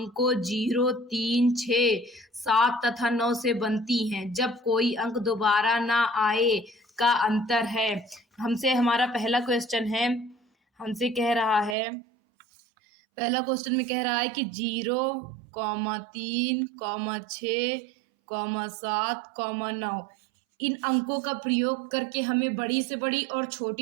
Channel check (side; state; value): left; drops out; at 11.8 s